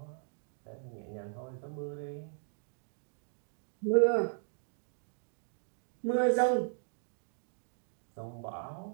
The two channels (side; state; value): left; silent; digital silence